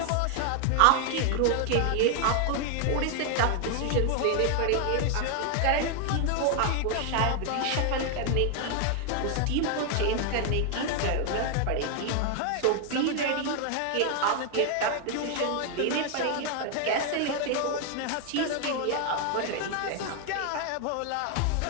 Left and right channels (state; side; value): different; both; correlation 0.00